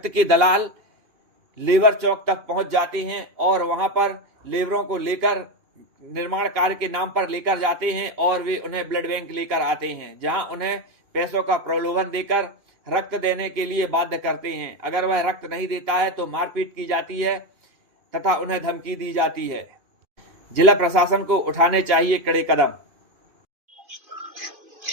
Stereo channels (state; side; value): late; left; 2.8 ms